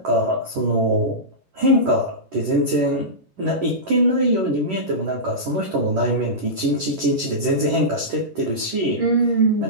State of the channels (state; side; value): late; left; 11 ms